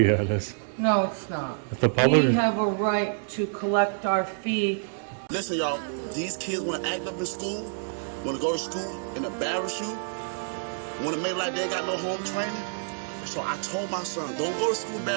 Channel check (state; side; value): silent; left; digital silence